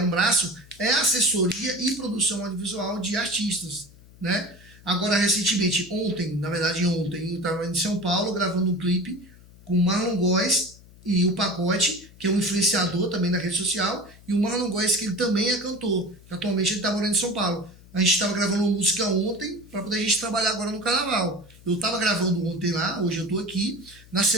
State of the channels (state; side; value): noise; left; hum, 23 dB below the sound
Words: braço, é assessoria e produção audiovisual de artistas, né? Agora, recentemente, ontem, eu estava em São Paulo gravando um clipe com o Marlon Góes e o Pacote, que é um influenciador também da rede social, e o Marlon Góes, que ele também é cantor, que atualmente ele está morando em São Paulo. A gente estava gravando uma música ontem, para poder a gente trabalhar agora no carnaval. Eu estava gravando ontem lá, hoje eu estou aqui. Na